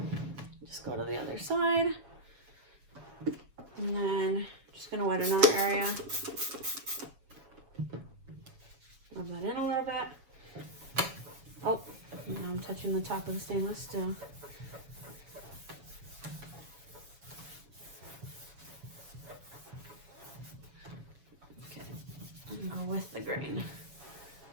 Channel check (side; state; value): left; late; 7.1 ms